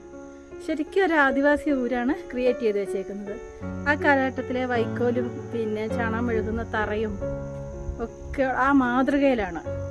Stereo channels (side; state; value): both; identical; correlation 1.00